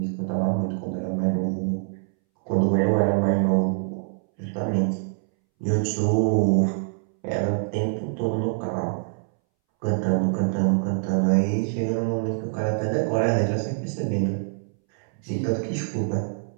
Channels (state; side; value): silent; left; 62 dB below the other